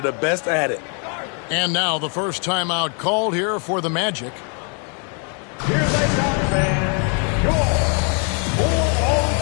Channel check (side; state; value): right; quieter; 39.2 dB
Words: the best at it. And now the first timeout called here for the Magic. Here they come, fans. Your